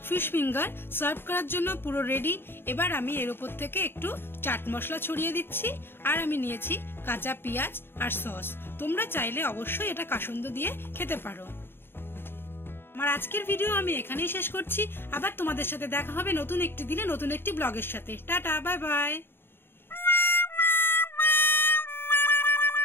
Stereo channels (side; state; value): right; late; 0.10 ms